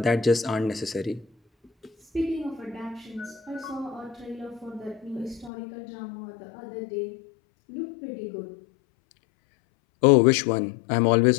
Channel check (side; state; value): right; drops out; at 5.5 s